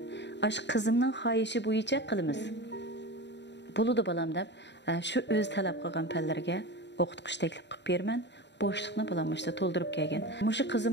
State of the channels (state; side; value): late; right; 0.51 ms